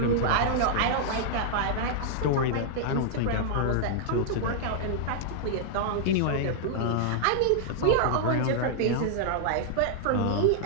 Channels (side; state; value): both; different; correlation -0.01